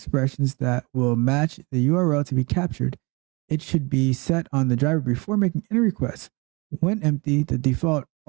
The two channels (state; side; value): quieter; left; 27.4 dB